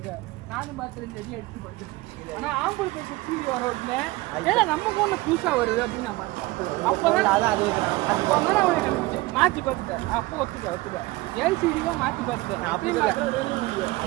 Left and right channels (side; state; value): left; quieter; 20.5 dB